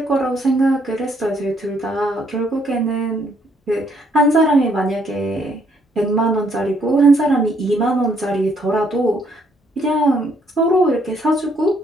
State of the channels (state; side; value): normal; both; correlation 0.69